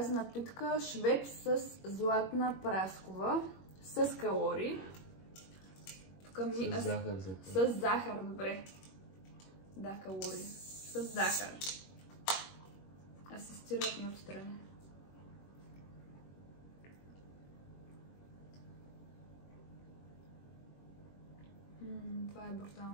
напитка Швепс с златна праскова. С калории. С захар. С захар, добре. Да, калории. С захар. Асистират ми отстрани. Това е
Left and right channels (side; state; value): right; late; 21 ms